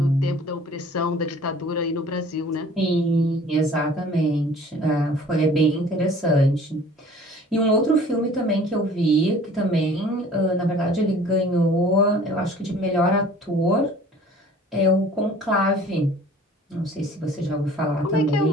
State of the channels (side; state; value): both; normal; correlation 0.49